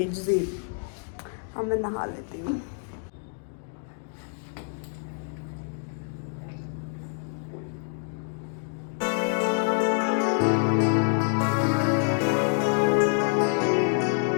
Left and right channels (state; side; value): silent; right; 60 dB below the other